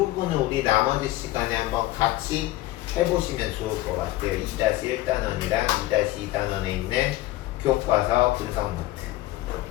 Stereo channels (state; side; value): quieter; right; 16.9 dB